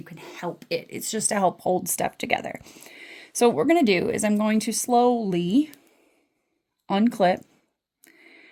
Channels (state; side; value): identical; both; correlation 1.00